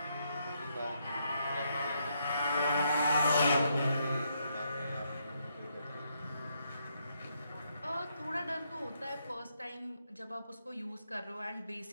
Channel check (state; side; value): inverted; both; correlation -0.76